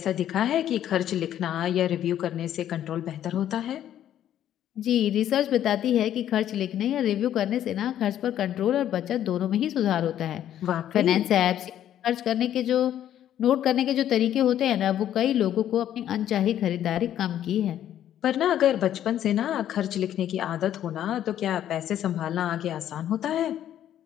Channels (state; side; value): quieter; right; 11.1 dB